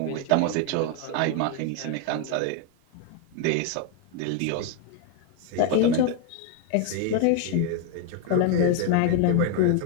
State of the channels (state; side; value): different; both; correlation 0.00